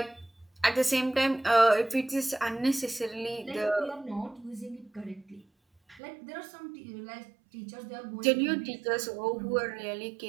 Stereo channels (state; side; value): drops out; left; at 6.0 s